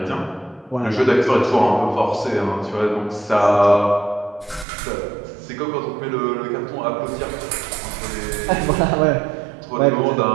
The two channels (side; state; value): left; drops out; at 4.7 s